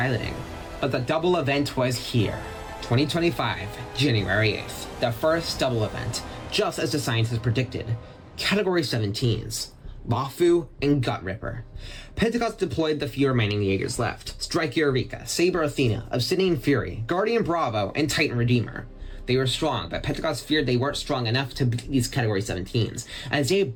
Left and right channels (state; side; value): identical; both; correlation 1.00